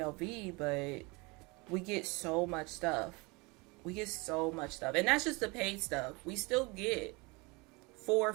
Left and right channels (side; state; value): left; quieter; 26.9 dB